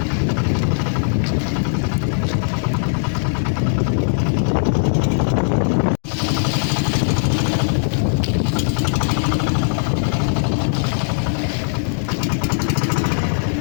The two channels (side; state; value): right; silent; digital silence